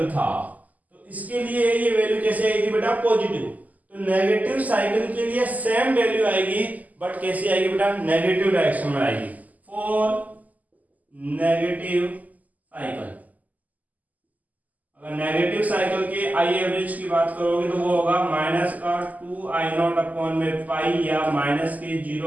था, तो इसके लिए ये वैल्यू कैसे आएगी बेटा, पॉजिटिव। तो नेगेटिव साइकिल के लिए सेम वैल्यू आएगी, बट कैसे आएगी बेटा, नेगेटिव डायरेक्शन में आएगी, फॉर नेगेटिव साइकिल। अगर नेगेटिव साइकिल के आई एवरेज की बात करोगे तो वो होगा माइनस का 2i0 अपॉन में पाई, या माइनस के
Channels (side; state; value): left; late; 0.079 ms